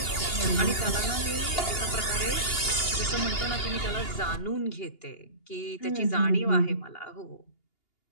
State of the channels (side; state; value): right; late; 2.8 ms